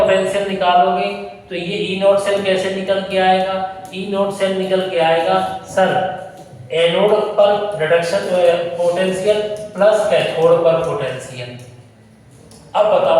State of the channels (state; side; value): identical; both; correlation 1.00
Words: निकालोगे तो ये ई नोट सेल कैसे निकल के आएगा? ई नोट सेल निकल के आएगा सर एनोड पर रिडक्शन पोटेंशियल प्लस कैथोड पर पोटेंशियल। अब